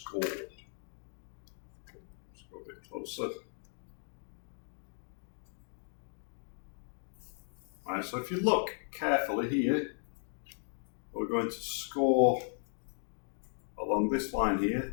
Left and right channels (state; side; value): silent; right; 54 dB below the other